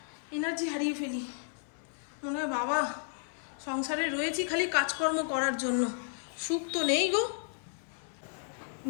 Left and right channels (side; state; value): right; silent; 56 dB below the other